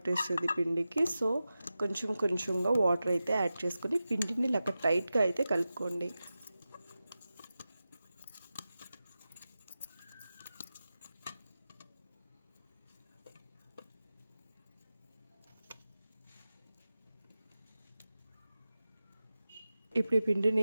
పిండికి. సో కొంచెం కొంచెంగా వాటర్ అయితే యాడ్ చేసుకొని పిండిని ఇలా టైట్గా అయితే కలుపుకోండి. ఇప్పుడు ఈ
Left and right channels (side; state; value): both; inverted; correlation -0.93